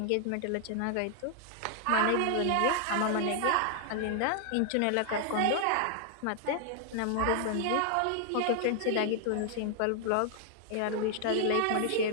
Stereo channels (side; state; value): both; different; correlation 0.00